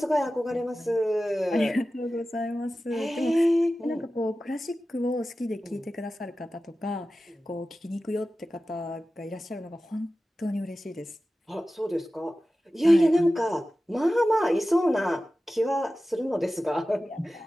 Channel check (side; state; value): both; normal; correlation 0.95